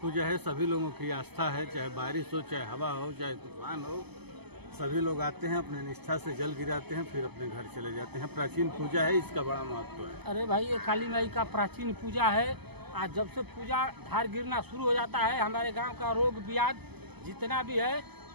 है, सभी लोगों की आस्था है, चाहे बारिश हो, चाहे हवा हो, चाहे तूफान हो, सभी लोग आते हैं, अपने निष्ठा से जल गिराते हैं, फिर अपने घर चले जाते हैं। प्राचीन पूजा है, इसका बड़ा महत्व है। अरे भाई, ये काली माई का प्राचीन पूजा है। आज जब से पूजा धार गिरना शुरू हो जाता है, हमारे गांव का रोग ब्याज जितना भी है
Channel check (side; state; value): left; late; 0.98 ms